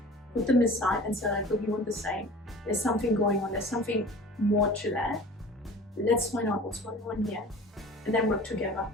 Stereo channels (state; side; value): normal; both; correlation 0.42